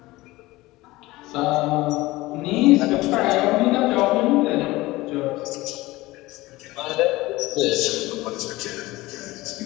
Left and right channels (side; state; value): right; quieter; 19.4 dB